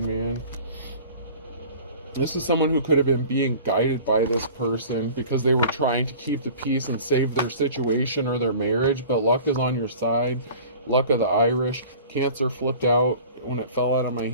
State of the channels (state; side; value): inverted; both; correlation -0.43